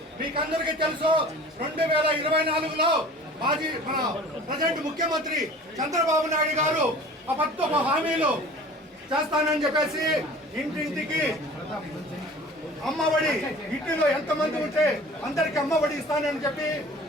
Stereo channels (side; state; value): both; normal; correlation 0.44